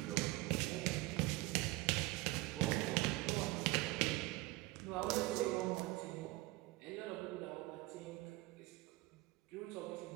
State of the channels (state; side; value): quieter; left; 20.1 dB